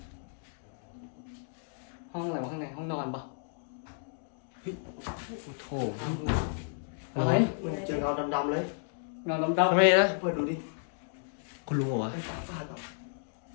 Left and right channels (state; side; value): silent; right; digital silence